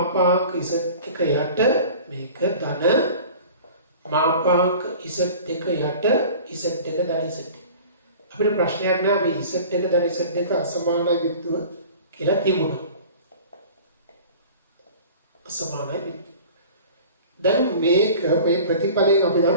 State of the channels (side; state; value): both; inverted; correlation -0.42